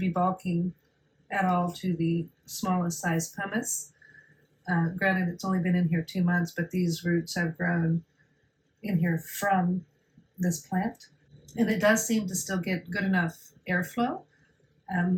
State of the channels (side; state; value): both; identical; correlation 1.00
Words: bulking at all to the smallest size pumice. Granted, it's only been in here 2 months, but these roots have grown in here from this plant, and it does seem to still get good enough airflow.